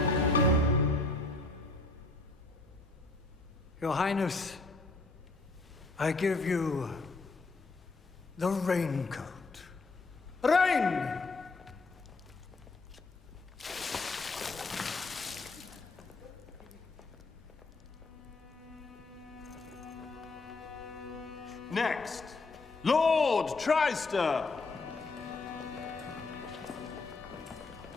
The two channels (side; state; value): right; quieter; 3.4 dB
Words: Your Highness, I give you the raincoat. Rain! Next, Lord Tryster!